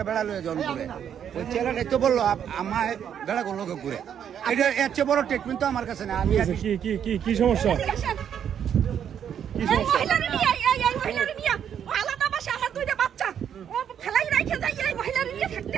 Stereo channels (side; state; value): left; quieter; 8.8 dB